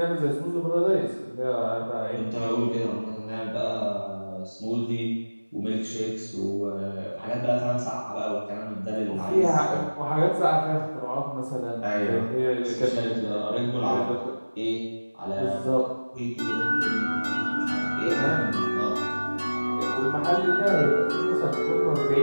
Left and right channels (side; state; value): both; inverted; correlation -1.00